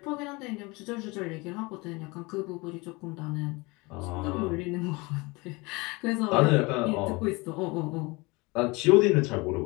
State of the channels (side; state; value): right; quieter; 25.3 dB